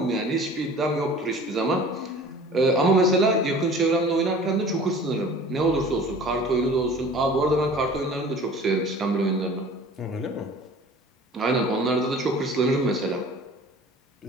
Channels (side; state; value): both; normal; correlation 0.45